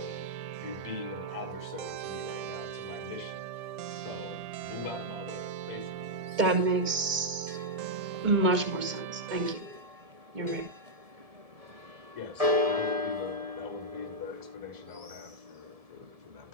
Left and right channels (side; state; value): left; late; 1.8 ms